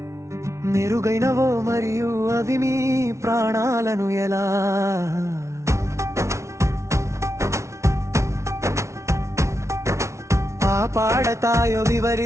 మెరుగైనవో మరియు అవి మీ ప్రాణాలను ఎలా కాపాడతాయో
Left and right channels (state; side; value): late; left; 0.14 ms